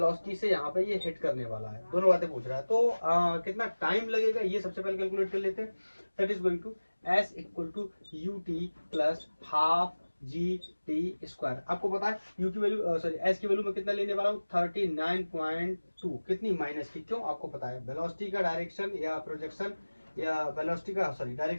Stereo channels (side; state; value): both; inverted; correlation -1.00